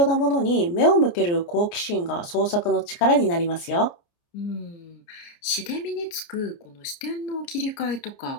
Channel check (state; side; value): late; right; 29 ms